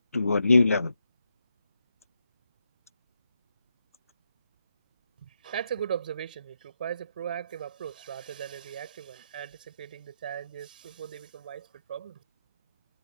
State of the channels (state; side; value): inverted; both; correlation -0.83